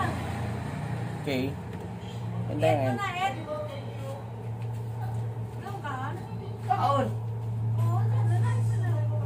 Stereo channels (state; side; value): identical; both; correlation 1.00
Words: Okay. And then, kaon.